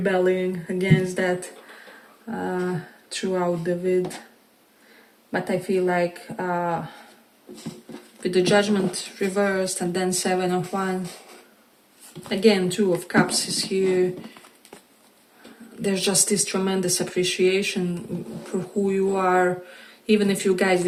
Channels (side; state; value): both; identical; correlation 1.00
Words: against that throughout the vid. But I feel like with the Judgment reversed and then 7 of Wands, again 2 of Cups is here, there's just this tremendous appreciation for who you are, even if you guys